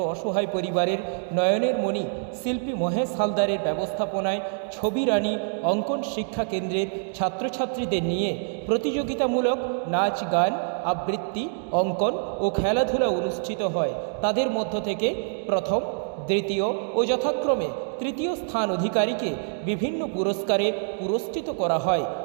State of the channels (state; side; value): silent; left; 61 dB below the other